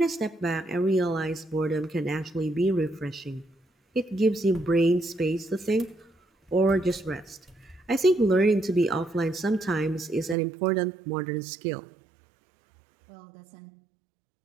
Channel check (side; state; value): left; drops out; at 10.4 s